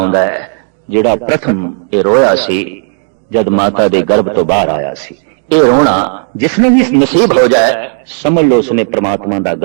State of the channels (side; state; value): left; silent; 60 dB below the other